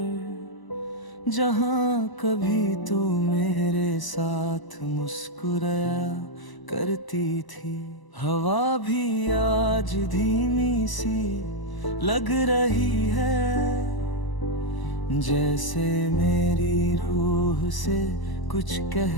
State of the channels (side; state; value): right; late; 1.0 ms